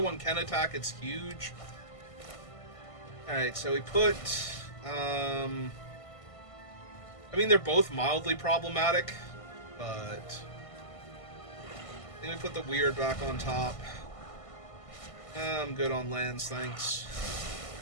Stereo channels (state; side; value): late; right; 1.5 ms